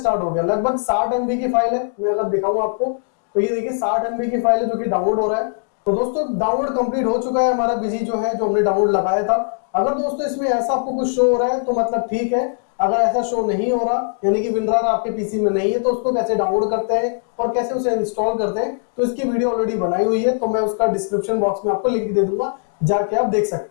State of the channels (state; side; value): silent; right; digital silence